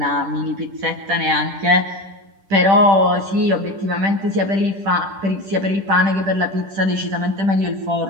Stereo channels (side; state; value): left; late; 10 ms